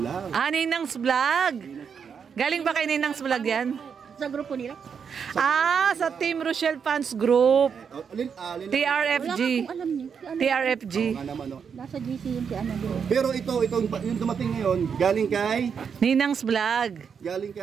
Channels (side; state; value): left; quieter; 6.7 dB